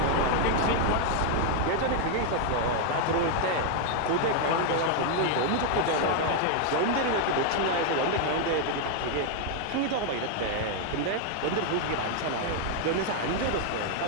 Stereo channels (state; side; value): different; both; correlation 0.00